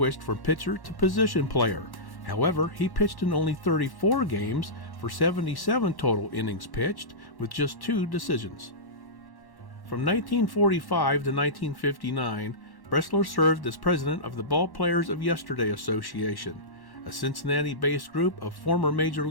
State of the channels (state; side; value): late; right; 1.1 ms